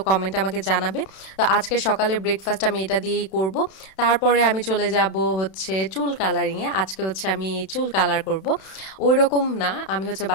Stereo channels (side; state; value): right; late; 31 ms